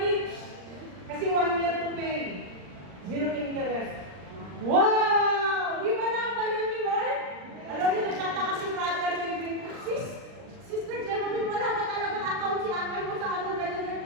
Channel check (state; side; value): late; left; 39 ms